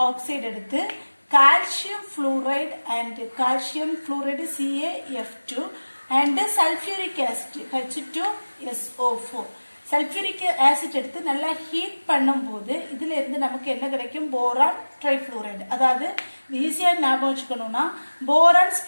எடுத்து calcium fluoride and calcium fluoride CaF2 and sulfuric acid H2SO4 sulfuric acid எடுத்து நல்லா ஹீட் பண்ணும்போது இதுல இருந்து நமக்கு என்ன கிடைக்கும் boron trifluoride அதாவது ஈஸியா ஞாபகம் வச்சுக்கணும்னா boron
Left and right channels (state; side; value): inverted; both; correlation -1.00